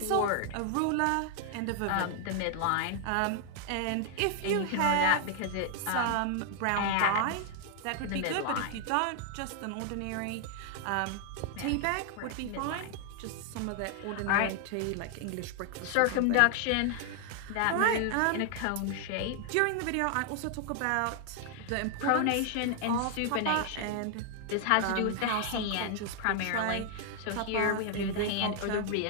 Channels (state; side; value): different; both; correlation 0.00